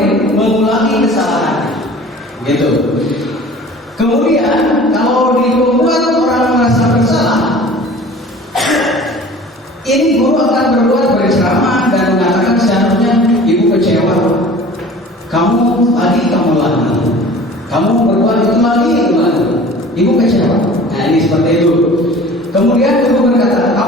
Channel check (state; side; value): normal; both; correlation 0.44